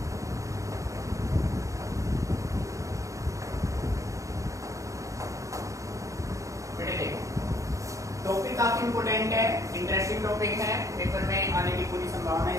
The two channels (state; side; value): late; left; 0.16 ms